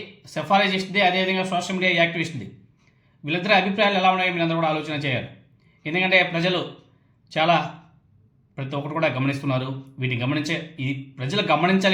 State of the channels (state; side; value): identical; both; correlation 1.00